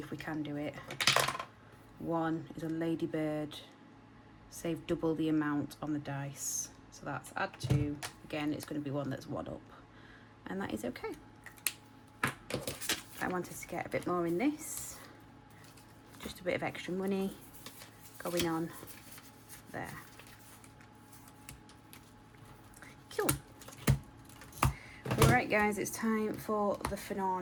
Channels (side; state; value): both; identical; correlation 1.00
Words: we can do it. 1 is a ladybird. Save double the amount on the dice. So that's add 2. Again, it's going to be one that's 1 up. And that is okay. I wanted to get a bit more in this. Just a bit of extra money going on there. Cool. Alright guys, it's time for the